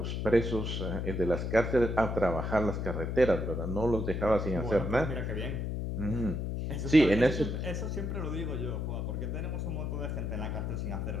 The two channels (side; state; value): left; noise; hum, 2 dB below the sound